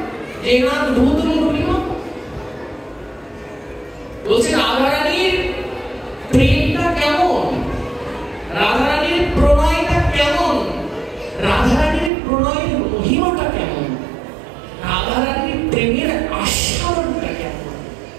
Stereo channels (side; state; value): left; drops out; at 12.1 s